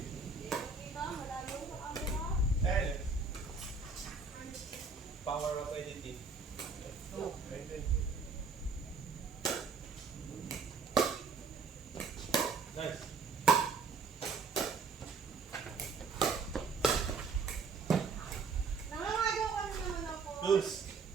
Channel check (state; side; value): quieter; left; 4.8 dB